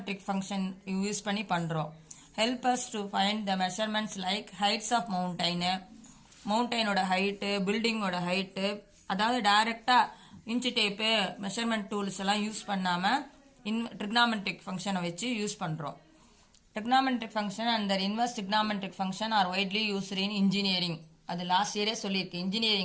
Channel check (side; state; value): both; identical; correlation 1.00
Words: function யூஸ் பண்ணி பண்ணுறோம். help us to find the measurements like heights of மவுண்டனோட height, பில்டிங்கோட height, அதாவது டைரெக்டாக இன்ச்சு டேப்பு மெஷர்மெண்ட் டூல்ஸ் எல்லாம் யூஸ் பண்ணாமல் trigonometric ஃபங்க்ஷனை வச்சு யூஸ் பண்ணுறோம். trigonometric function and the inverse trigonometric function are widely used in engineering. அது லாஸ்ட் இயரே சொல்லியிருக்கு,